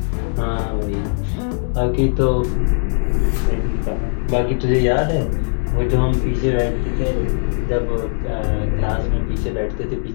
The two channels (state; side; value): silent; right; digital silence